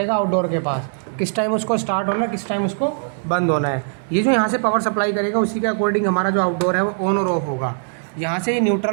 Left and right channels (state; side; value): silent; left; digital silence